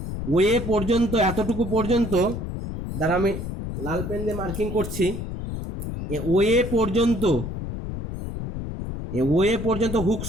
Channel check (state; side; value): noise; left; rumble, 6 dB below the sound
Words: ওয়ে পর্যন্ত, এতটুকু পর্যন্ত, দ্বারা আমি লাল পেন দিয়ে মার্কিং করছি, ওয়ে পর্যন্ত, ওয়ে পর্যন্ত হুকস